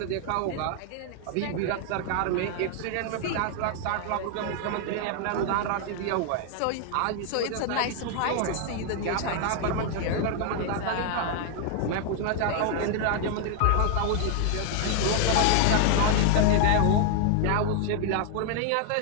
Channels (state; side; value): different; both; correlation 0.00